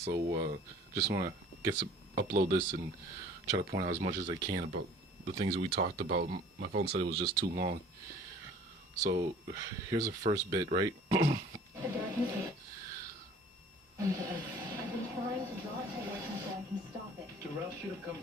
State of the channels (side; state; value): both; normal; correlation 0.50